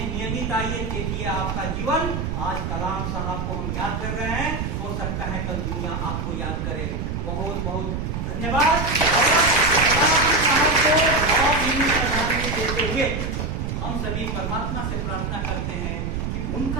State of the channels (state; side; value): noise; right; rumble, 2 dB below the sound